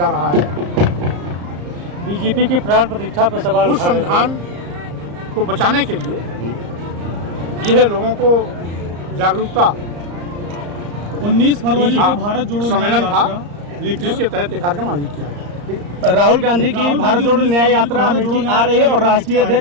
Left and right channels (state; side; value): late; left; 34 ms